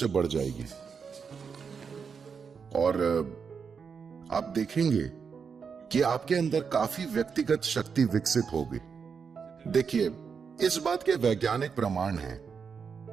बढ़ जाएगी और आप देखेंगे कि आपके अंदर काफी व्यक्तिगत शक्ति विकसित होगी। देखिए, इस बात के वैज्ञानिक प्रमाण हैं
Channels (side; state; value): left; quieter; 6.0 dB